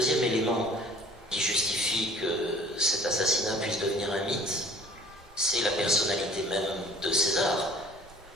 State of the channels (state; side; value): normal; both; correlation 0.50